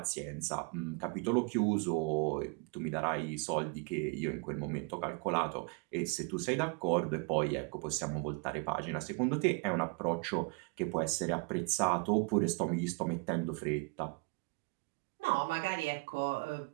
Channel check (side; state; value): left; quieter; 31.2 dB